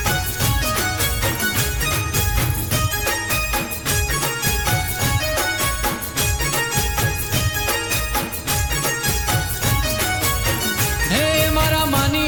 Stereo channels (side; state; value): both; identical; correlation 1.00